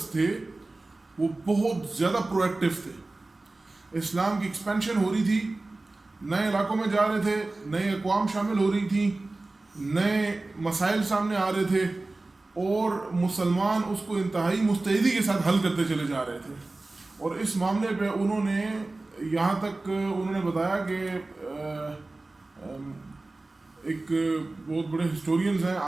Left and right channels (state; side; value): quieter; left; 3.1 dB